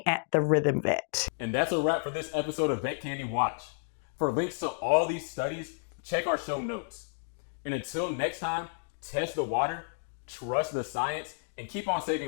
at The Rhythm Vet. And that's a wrap for this episode of Vet Candy Watch. For links to all these studies, check our show notes. And until next time, test the water, trust the science, and keep on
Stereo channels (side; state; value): right; silent; digital silence